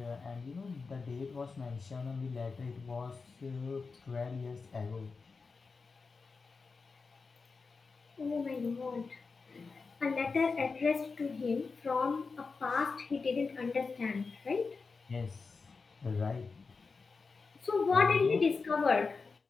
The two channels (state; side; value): quieter; right; 4.5 dB